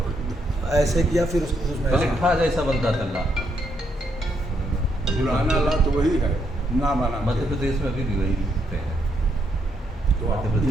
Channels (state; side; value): normal; both; correlation 0.76